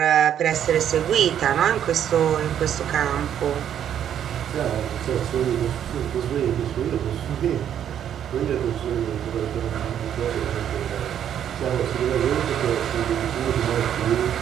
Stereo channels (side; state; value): left; quieter; 9.7 dB